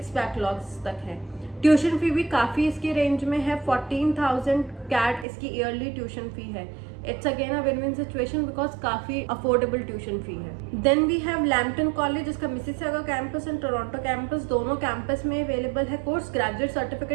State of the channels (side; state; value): left; drops out; at 5.2 s